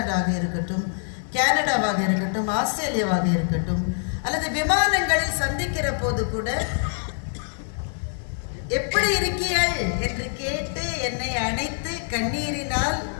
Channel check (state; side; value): silent; right; digital silence